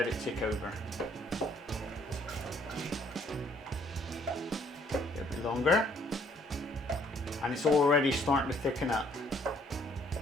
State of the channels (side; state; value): both; normal; correlation 0.64